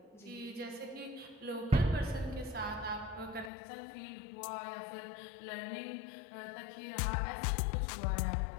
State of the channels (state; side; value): drops out; right; at 3.5 s